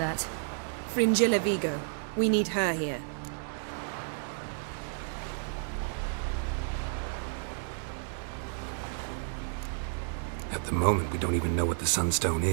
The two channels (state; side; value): silent; left; 57 dB below the other